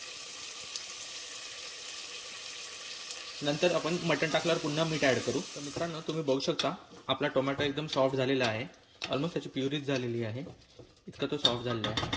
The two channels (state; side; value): identical; both; correlation 1.00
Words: नंतर आपण मटण टाकल्यावर पुन्हा मीठ ॲड करू. तर मित्रांनो, तुम्ही बघू शकता आपला टोमॅटो एकदम सॉफ्ट झालेला आहे. ऑलमोस्ट त्याची प्युरीच झालेली आहे, इतका तो सॉफ्ट झालेला आहे.